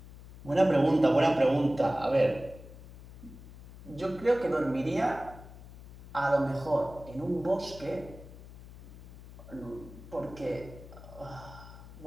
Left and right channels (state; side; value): noise; left; hum, 17 dB below the sound